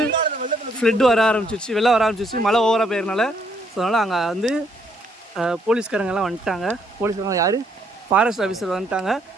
ஃப்ளட் வர ஆரம்பிச்சிச்சு, வெள்ளம் வர ஆரம்பிச்சிச்சு, மழை ஓவராக போயிருந்தால. ஸோ அதனால் அங்கே வந்து போலீஸ்காரங்கெல்லாம் வந்துட்டாங்க. போலீஸ்காரங்க யார், ஃபாரஸ்ட் ஆஃபீஸர் வந்துட்டாங்க.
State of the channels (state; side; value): normal; both; correlation 0.70